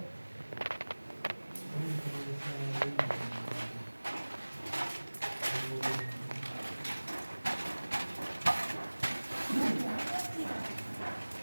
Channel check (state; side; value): inverted; both; correlation -1.00